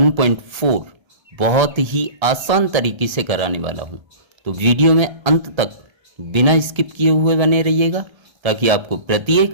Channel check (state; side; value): late; left; 1.3 ms